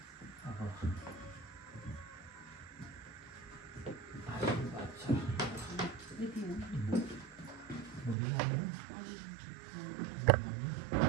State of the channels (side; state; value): left; drops out; at 8.2 s